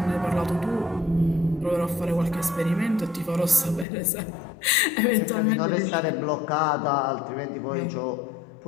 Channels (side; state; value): right; drops out; at 3.9 s